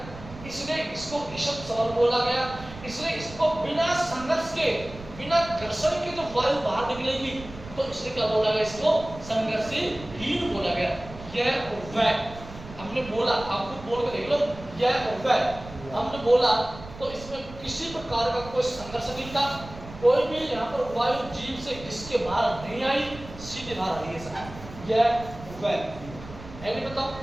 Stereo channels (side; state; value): right; noise; rumble, 15 dB below the sound